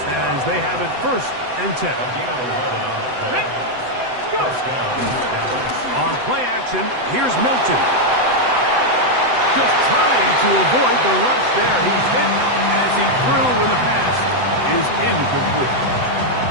they have it 1st and 10. On play action, here's Milton. Just trying to avoid the rush there. He's hit as he threw in the pass is incomplete.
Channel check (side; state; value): left; late; 7.9 ms